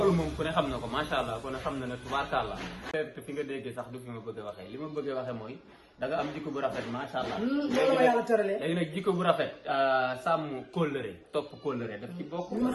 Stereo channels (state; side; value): identical; both; correlation 1.00